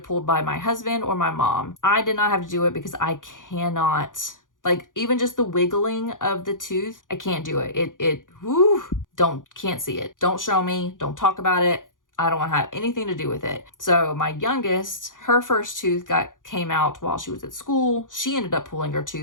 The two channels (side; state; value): right; late; 0.88 ms